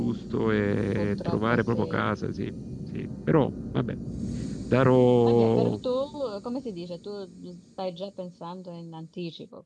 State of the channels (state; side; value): identical; both; correlation 1.00